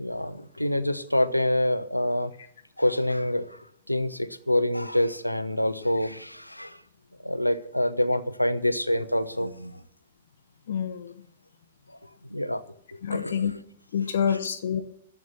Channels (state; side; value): inverted; both; correlation -0.92